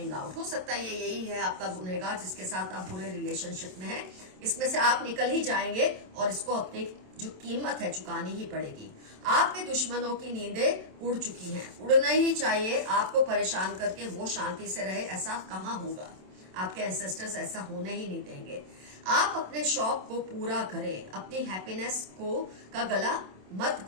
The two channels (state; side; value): late; left; 27 ms